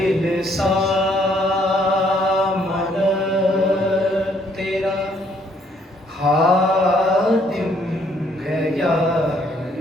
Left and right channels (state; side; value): normal; both; correlation 0.66